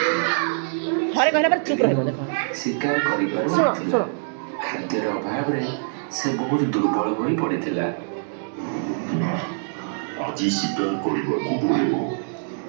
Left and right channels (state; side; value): silent; left; digital silence